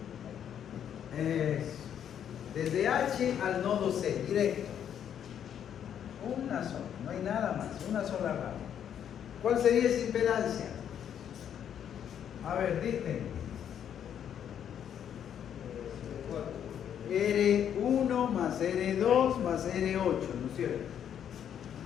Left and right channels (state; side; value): quieter; right; 9.2 dB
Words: Desde H al nodo C, directo. Una sola, no hay nada más, una sola rama. ¿Cuál sería esa impedancia? A ver, dicen. R1 más R2 más R8, ¿no es cierto?